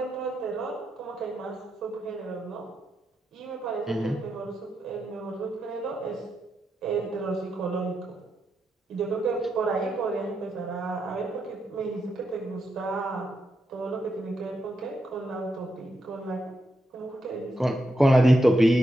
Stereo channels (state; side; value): normal; both; correlation 0.84